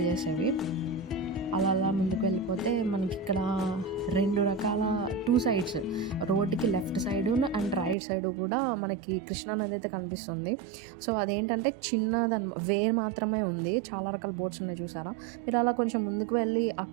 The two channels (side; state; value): left; drops out; at 8.0 s